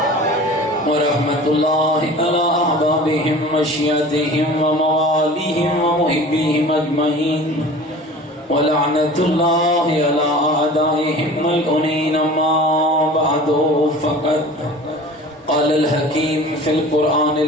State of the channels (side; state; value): both; normal; correlation 0.41